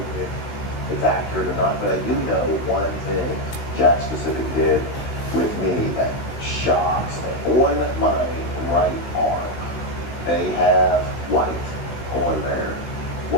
if it's accurate or not, but I do know one thing Jack Specific did with me that shocks me. On my right arm, they have white on there.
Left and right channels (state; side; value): late; right; 16 ms